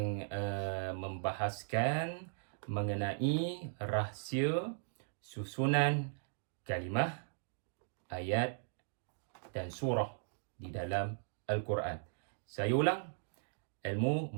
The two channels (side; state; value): left; silent; digital silence